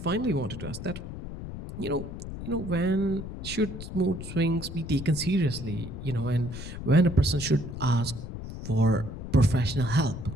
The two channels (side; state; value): left; noise; rumble, 9 dB below the sound